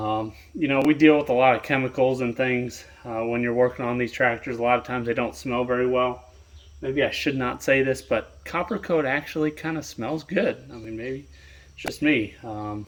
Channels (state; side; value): identical; both; correlation 1.00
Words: deal with a lot of chemicals and things when you're working on these tractors. A lot of times they don't smell very well. Maybe I should not say this, but copper coat actually kind of smells good. I mean, maybe it's just me.